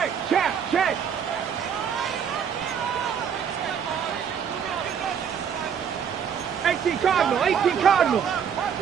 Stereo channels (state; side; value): quieter; left; 7.7 dB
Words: check, check. Cardinal, 18 Cardinal.